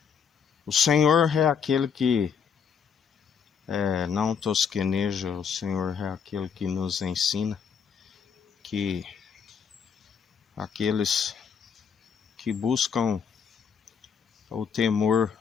O Senhor é aquele que não tosqueneja, o Senhor é aquele que nos ensina que aqueles que buscam o temor,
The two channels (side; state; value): right; quieter; 6.8 dB